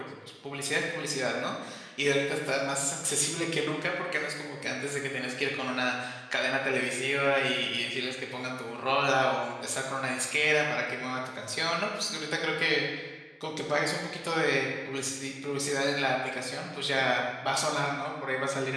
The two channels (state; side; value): identical; both; correlation 1.00